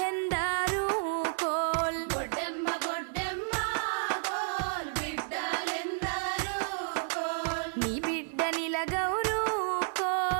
కోల్ గొడ్డెమ్మ గొడ్డెమ్మ కోల్ బిడ్డలెందరూ కోల్ నీ బిడ్డ నిలగౌరు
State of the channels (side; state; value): left; silent; digital silence